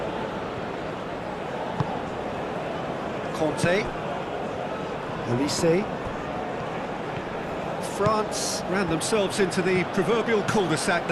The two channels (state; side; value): identical; both; correlation 1.00